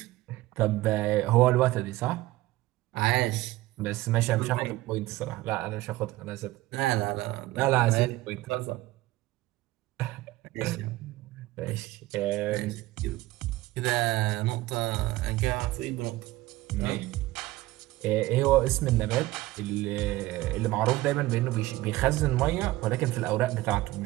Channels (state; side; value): quieter; left; 17.6 dB